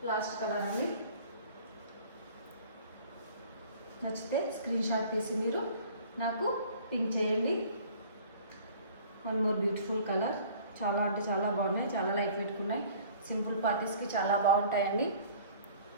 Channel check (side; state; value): both; inverted; correlation -0.50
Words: లాస్ట్ కలర్ అండి. నచ్చితే స్క్రీన్ షాట్ తీసి మీరు నాకు పింక్ చేయండి. One more beautiful colour. చాలా అంటే చాలా బాగున్నాయి, చాలా లైట్ వెయిట్ ఉన్నాయి. సింపుల్ పార్టీస్కి చాలా బాగుంటాయండి.